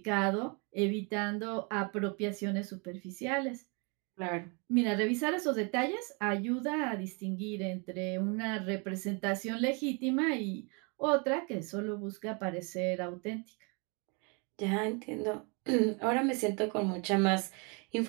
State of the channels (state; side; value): quieter; left; 33.4 dB